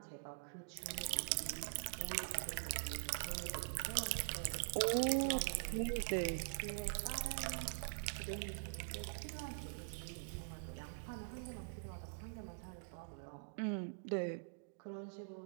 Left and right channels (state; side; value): silent; left; digital silence